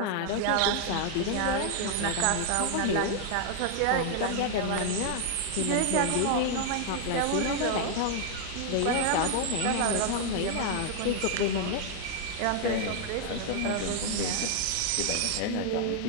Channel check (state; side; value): different; both; correlation 0.00